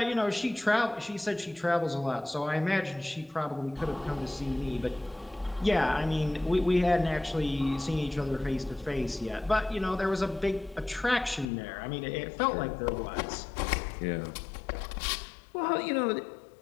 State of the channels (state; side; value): drops out; right; at 11.5 s